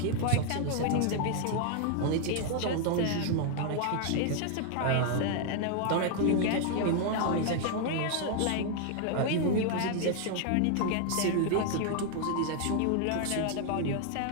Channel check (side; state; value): both; different; correlation 0.00